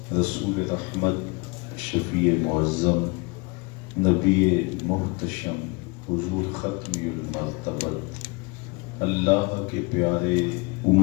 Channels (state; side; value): quieter; right; 28.1 dB